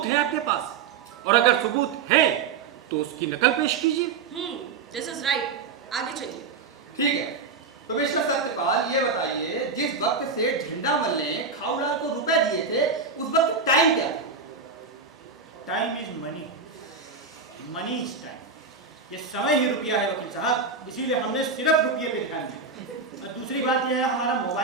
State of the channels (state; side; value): quieter; left; 4.9 dB